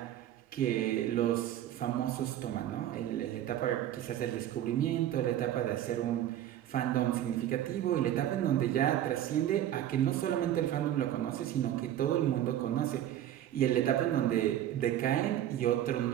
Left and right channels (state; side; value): quieter; left; 11.9 dB